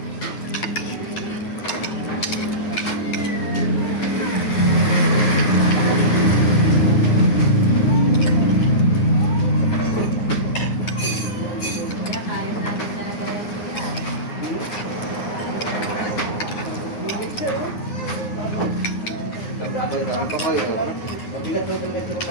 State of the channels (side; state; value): right; late; 9.5 ms